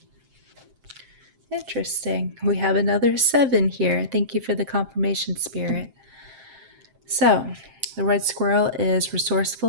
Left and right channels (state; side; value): late; left; 7.6 ms